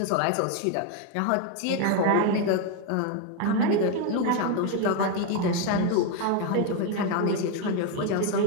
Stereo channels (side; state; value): both; different; correlation 0.02